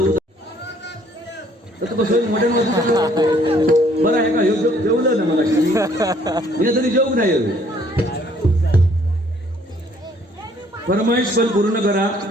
तर तू कसं मॉडेल बरं आहे का जेवलं ना मला हे तरी जेवू नाही फरमाईश पण पूर्ण करा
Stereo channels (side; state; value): both; normal; correlation 0.62